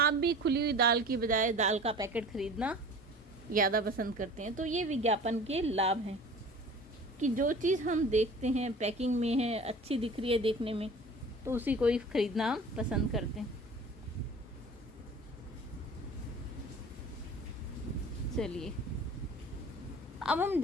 भी खुली हुई दाल की बजाय दाल का पैकेट खरीदना ज़्यादा पसंद करते हैं। तो ये विज्ञापन के लाभ हैं कि जो चीज़ हम देखते हैं पैकिंग में है, अच्छी दिख रही है देखने में, तो उसी को ही खरीदना हम पसंद करते हैं। चलिए, अब हम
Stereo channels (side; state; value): both; normal; correlation 0.42